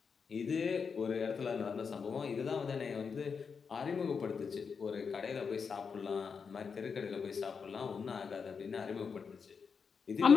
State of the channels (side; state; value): right; quieter; 5.8 dB